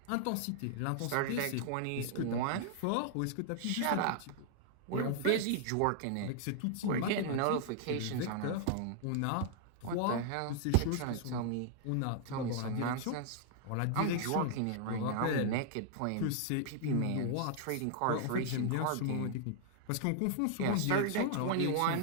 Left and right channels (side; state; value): both; different; correlation -0.01